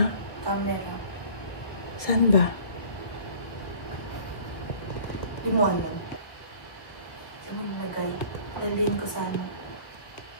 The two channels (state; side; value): late; right; 1.5 ms